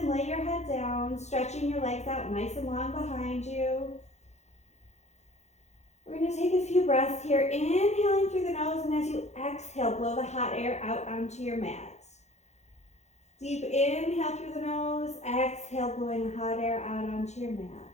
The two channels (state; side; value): late; right; 0.33 ms